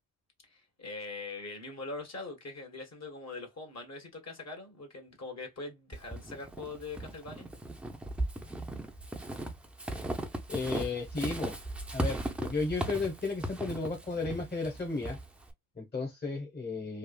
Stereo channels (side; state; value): both; normal; correlation 0.64